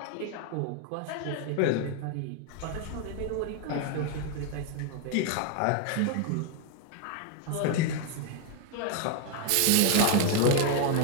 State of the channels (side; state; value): both; different; correlation 0.01